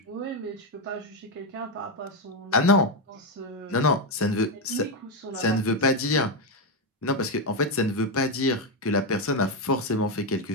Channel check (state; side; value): normal; both; correlation 0.06